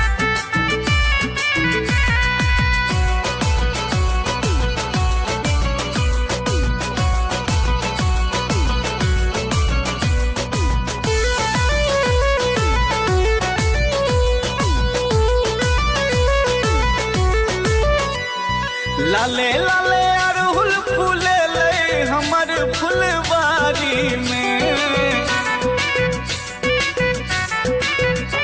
लाले लाले अड़हुल फूले ले हमर फुलवारी में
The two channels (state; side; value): identical; both; correlation 1.00